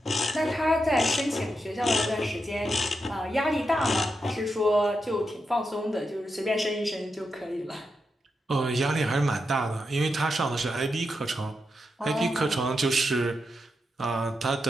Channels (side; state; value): both; normal; correlation 0.86